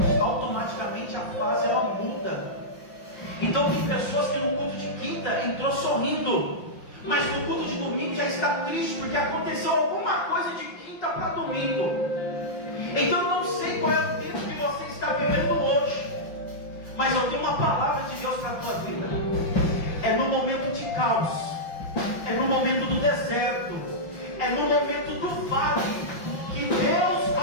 Automaticamente a fase ela muda. Então tem pessoas que no culto de quinta entrou sorrindo, mas no culto de domingo já está triste, porque aconteceu alguma coisa de quinta para domingo. Então eu não sei qual é o tempo que você está vivendo hoje, mas eu tenho uma palavra de Deus para a tua vida. É no momento de caos, é no momento do deserto, é no momento do vale, que Deus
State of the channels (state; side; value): late; right; 5.8 ms